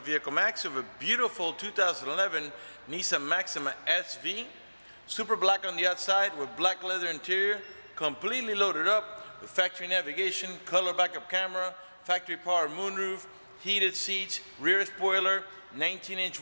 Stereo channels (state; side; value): inverted; both; correlation -1.00